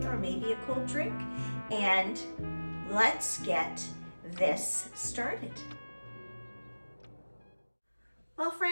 or maybe a cold drink, and let's get this started. Well,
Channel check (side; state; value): both; inverted; correlation -1.00